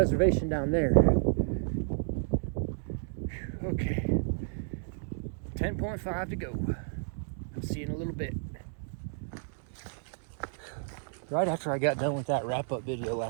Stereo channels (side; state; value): left; silent; 57 dB below the other